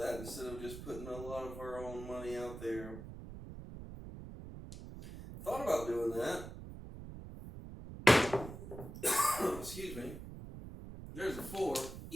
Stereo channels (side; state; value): right; noise; rumble, 11 dB below the sound